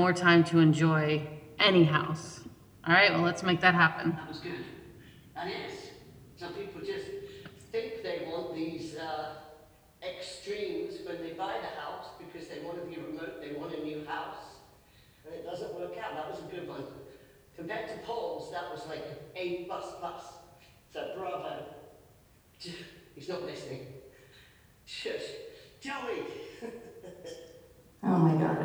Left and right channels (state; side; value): identical; both; correlation 1.00